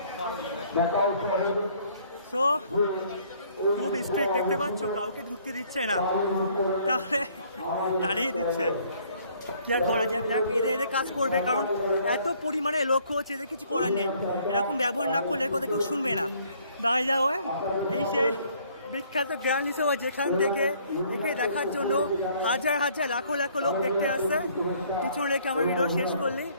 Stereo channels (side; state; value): both; inverted; correlation -0.61